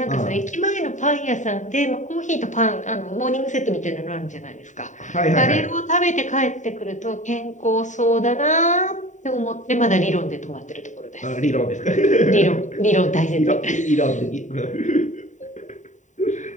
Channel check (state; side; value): late; right; 0.36 ms